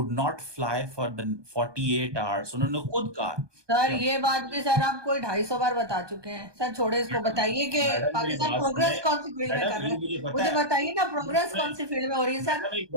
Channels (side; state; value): left; late; 1.2 ms